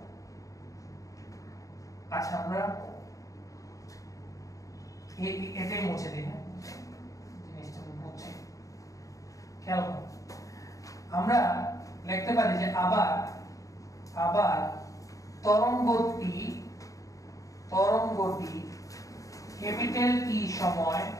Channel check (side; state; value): right; late; 0.16 ms